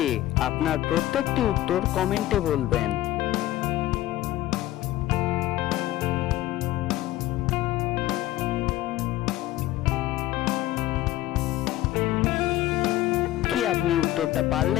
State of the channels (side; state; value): right; quieter; 15.3 dB